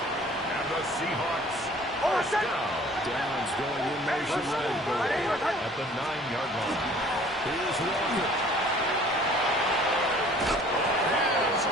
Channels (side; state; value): both; normal; correlation 0.52